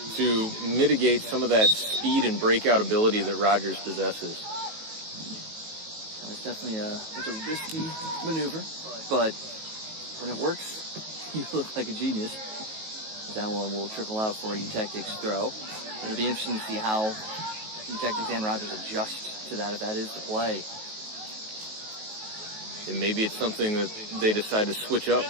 to mitigate some of that speed and breakout ability that Rogers possesses. It's definitely a risky maneuver, but when it works, you look like a genius. That one will trickle out for Tactics throw. It'll be interesting to see how Tactics and Rogers adjust to that, if that is the play. And maybe it's something that they decide to switch up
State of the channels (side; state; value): left; late; 19 ms